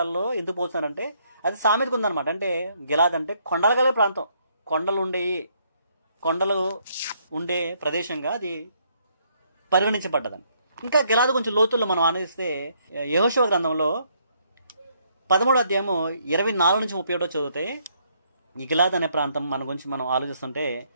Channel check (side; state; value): both; inverted; correlation -0.70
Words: ఎందుకు పోలుస్తున్నాడంటే అది సామెతకు ఉందన్నమాట. అంటే గిలాద్ అంటే కొండలు గల ప్రాంతం, కొండలు ఉండే ప్రదేశంగా అది పరిగణించబడ్డదండి. ఇంకా గిలాదు కొంచెం లోతుల్లో మనం ఆనందిస్తే యెహోషువ గ్రంథంలో 13వ అధ్యాయము 24 నుంచి 31 చదివితే ఈ గిలాద్ అనే ప్రాంతం మన గురించి మనం ఆలోచిస్తుంటే